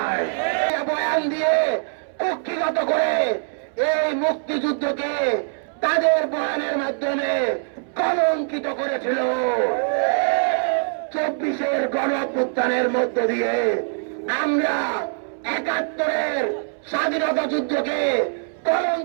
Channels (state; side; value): silent; left; 64 dB below the other